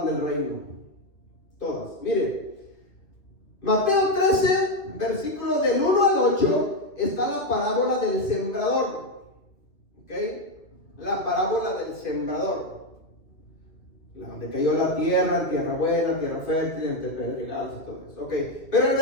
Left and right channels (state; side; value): late; right; 2.4 ms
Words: del reino. Todas. Miren, Mateo 13, versículo del 1 al 8, está la parábola del sembrador. ¿Ok? La parábola del sembrador. Donde cayó la tierra, tierra buena, tierra fértil, entre pedregales y todo eso. Ok. Pero el